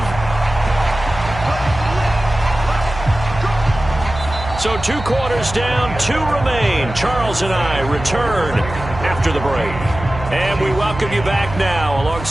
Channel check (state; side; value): noise; right; hum, 10 dB below the sound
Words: 5. So 2 quarters down, 2 remain. Charles and I return after the break. And we welcome you back now.